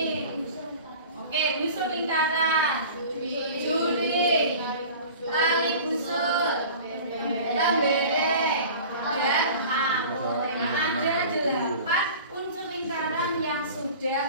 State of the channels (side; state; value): both; inverted; correlation -0.40